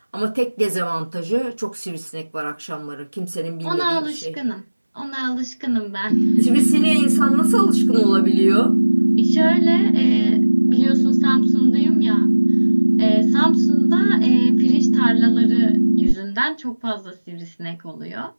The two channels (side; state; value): both; inverted; correlation -1.00